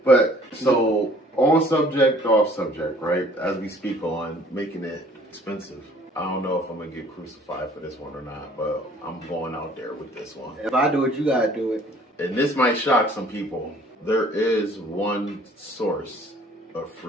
But so on subject, off subject, right? As we speak on making it expensive. I don't know if I'm gonna get crucified for this one or not, but I'm going out there with this one. If I do it, you gotta do it. And this might shock some people. There is one source of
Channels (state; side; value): normal; both; correlation 0.55